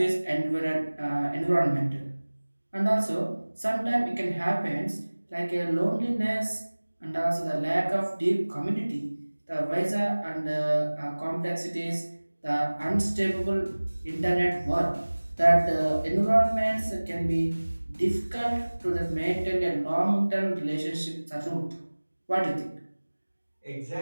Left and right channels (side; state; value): both; inverted; correlation -1.00